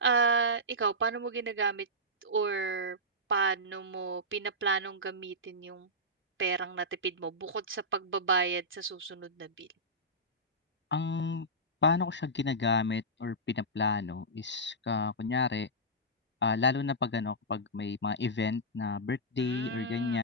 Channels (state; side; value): normal; both; correlation -0.12